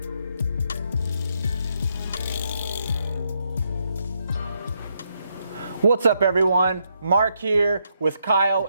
What's up everyone? Mark here with Kyle.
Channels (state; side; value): inverted; both; correlation -0.78